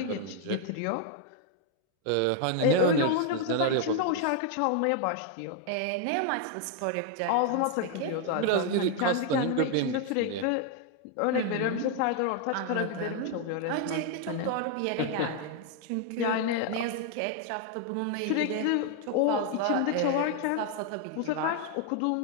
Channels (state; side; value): different; both; correlation 0.00